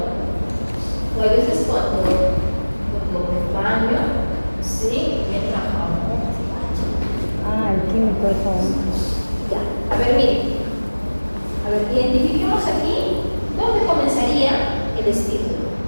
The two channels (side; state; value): both; inverted; correlation -1.00